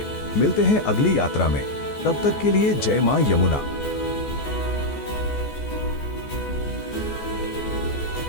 मिलते हैं अगली यात्रा में, तब तक के लिए जय मां यमुना।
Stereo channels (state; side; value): late; right; 14 ms